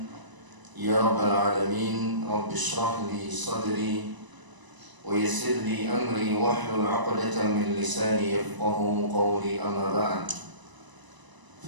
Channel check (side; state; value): left; late; 1.0 ms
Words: يا رب العالمين. رب اشرح لي صدري ويسر لي أمري واحلل عقدة من لساني يفقه قولي. أما بعد،